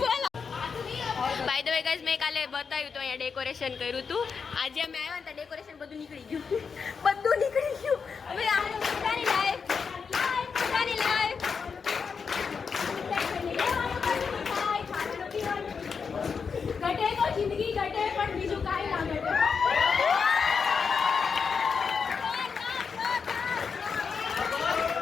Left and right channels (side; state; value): right; quieter; 5.7 dB